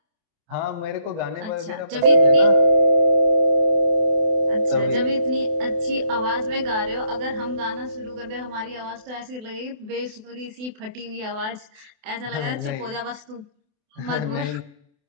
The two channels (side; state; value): left; late; 28 ms